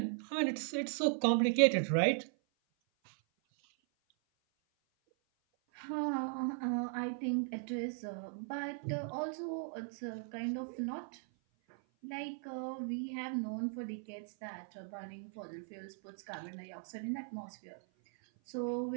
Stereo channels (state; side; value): silent; left; 52 dB below the other